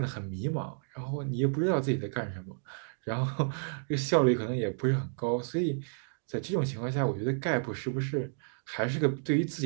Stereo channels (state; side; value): silent; left; digital silence